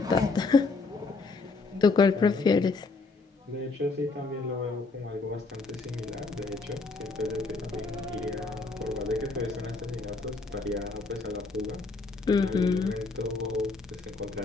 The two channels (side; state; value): right; quieter; 3.9 dB